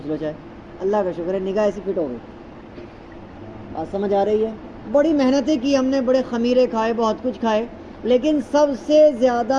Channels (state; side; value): identical; both; correlation 1.00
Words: لو، چاہے، اللہ کا شکر ہے نگاہ ایسی فٹ ہو گئی۔ بات سمجھ آ رہی ہے؟ بڑی محنتیں کی ہم نے، بڑے خمیرے کھائے، بہت کچھ کھائے، لیکن سب سے